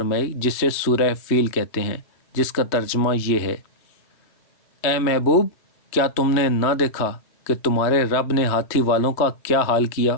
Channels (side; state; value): right; late; 3.2 ms